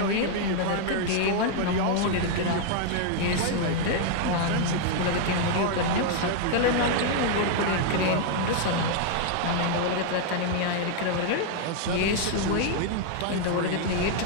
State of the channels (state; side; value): different; both; correlation 0.00